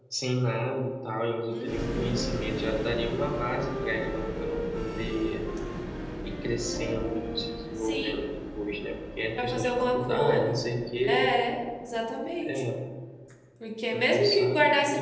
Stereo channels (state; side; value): identical; both; correlation 1.00